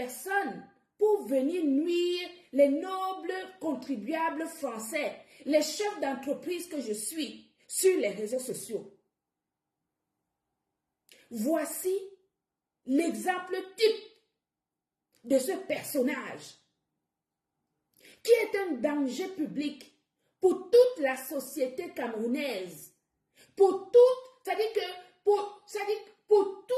pour venir nuire les nobles contribuables français, les chefs d'entreprise que je suis sur les réseaux sociaux. Voici l'exemple type de ce personnage qui est un danger public pour toute la société camerounaise, pour toute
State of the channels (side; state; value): both; identical; correlation 1.00